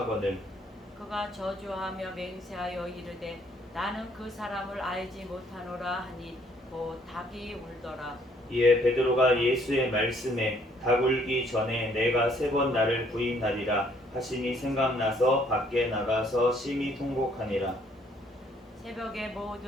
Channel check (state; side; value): normal; both; correlation 0.65